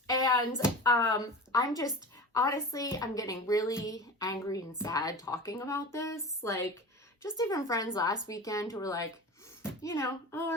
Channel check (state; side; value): normal; both; correlation 0.33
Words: and I'm getting really angry and sad talking about this. Just even friends last weekend who were